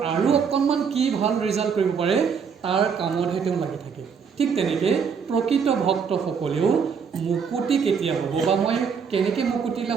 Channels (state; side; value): quieter; left; 6.4 dB